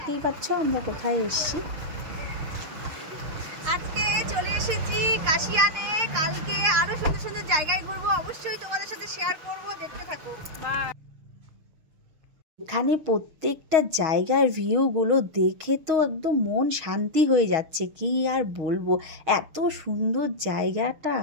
পাচ্ছ আমরা কোথায় এসেছি। আজকে চলে এসেছি কাশিয়ানে। কালকে আরো সুন্দর সুন্দর জায়গায় ঘুরবো, অবশ্যই তোমাদের সাথে শেয়ার করব, দেখতে থাকো। এখানে প্রত্যেকটা জায়গার ভিউগুলো দেখে তো একদম মন শান্তি হয়ে যাচ্ছে, কি আর বলবো, এত সুন্দর জায়গাটা।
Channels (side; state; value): left; late; 6.5 ms